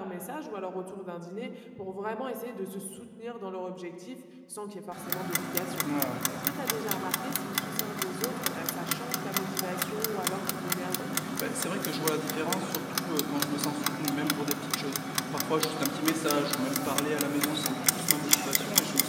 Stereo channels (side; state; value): both; identical; correlation 1.00